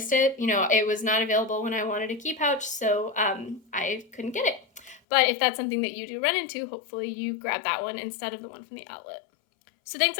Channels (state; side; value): drops out; right; at 5.0 s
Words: it. You know, it was not available when I wanted a key pouch, so I couldn't get it. But if that's something that you do run into, hopefully you grab that one instead of the one from the outlet. So thanks